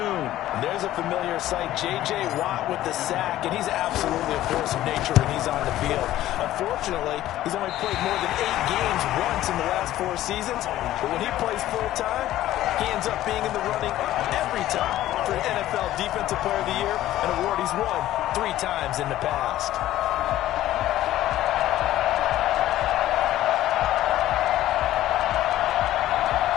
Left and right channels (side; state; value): right; quieter; 14.1 dB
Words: And there's a familiar sight. J.J. Watt with the sack, and he's absolutely a force of nature when he's on the field. Unfortunately, he's only played more than 8 games once in the last 4 seasons. But when he plays full-time, he ends up being in the running every time for NFL Defensive Player of the Year, an award he's won 3 times in the past.